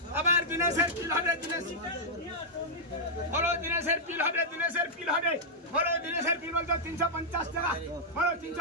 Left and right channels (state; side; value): normal; both; correlation -0.07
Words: আবার দিনেশের পিল হবে বলো দিনেশের পিল হবে বলো দিনেশের পিল বলতো 350 টাকা বলো